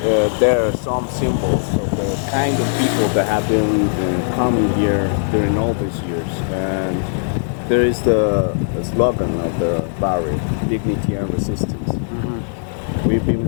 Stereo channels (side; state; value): right; silent; digital silence